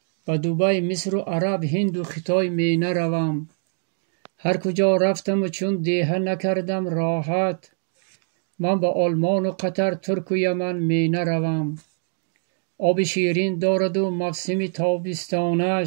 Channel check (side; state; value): left; silent; digital silence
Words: به دبی مصر و عرب هند و خطای می نروم. هر کجا رفتم و چون دیهه نکردم راحت، من به آلمان و قطر ترک و یمن می نروم. آب شیرین دارد و موسم